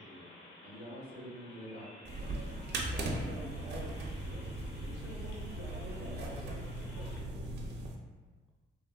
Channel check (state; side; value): normal; both; correlation 0.56